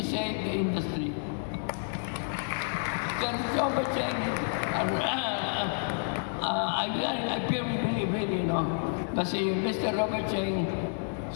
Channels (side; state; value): right; silent; 57 dB below the other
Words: saved the industry. Then, Robert Chen, I firmly believe, really, you know, kasi Mr. Robert Chen